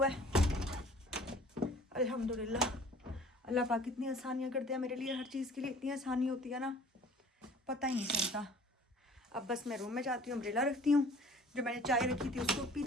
है। अल्हम्दुलिल्लाह अल्लाह पाक कितनी आसानियाँ करते हैं मेरे लिए, हर चीज़ के लिए इतनी आसानी होती है ना, पता ही नहीं चलता। अब बस मैं रूम में जाती हूँ, अम्ब्रेला रखती हूँ, जो मैंने चाय रखी थी उसको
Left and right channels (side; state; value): both; normal; correlation 0.50